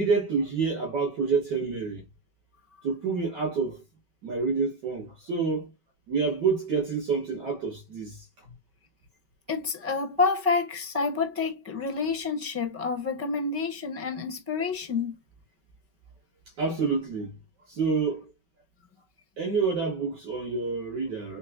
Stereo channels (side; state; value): left; late; 5.3 ms